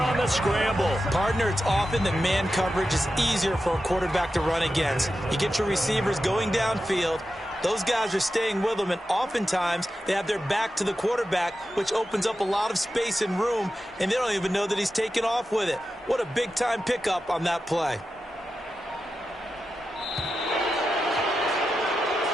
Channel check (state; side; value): normal; both; correlation 0.91